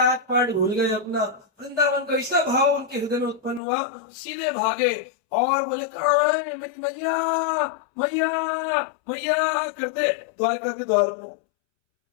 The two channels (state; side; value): drops out; right; at 3.6 s